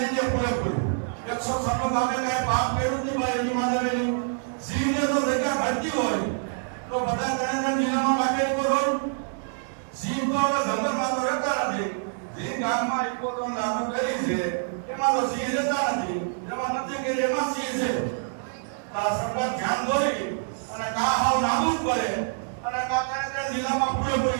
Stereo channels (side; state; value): left; silent; digital silence